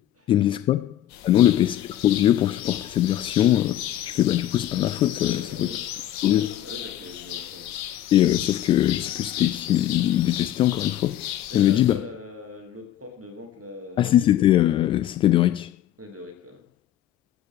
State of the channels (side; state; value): right; quieter; 12.3 dB